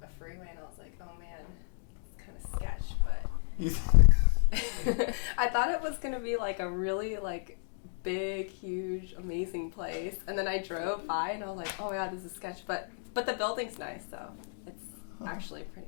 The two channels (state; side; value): silent; right; digital silence